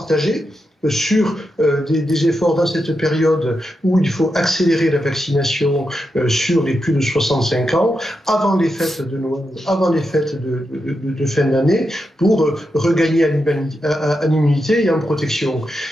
sur des efforts dans cette période où il faut accélérer la vaccination sur les plus de 65 ans, avant les fêtes de Noël, avant les fêtes de fin d'année, pour regagner en immunité et en protection.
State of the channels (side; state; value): both; normal; correlation 0.86